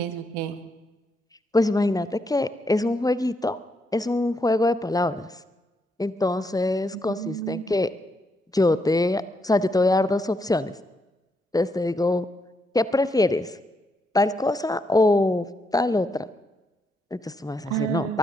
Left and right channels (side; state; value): both; normal; correlation 0.78